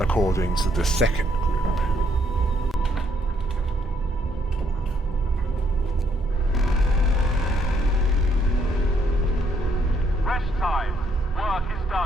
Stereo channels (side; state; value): both; normal; correlation 0.71